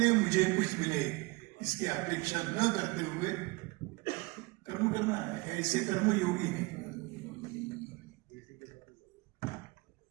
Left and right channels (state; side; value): quieter; left; 24.2 dB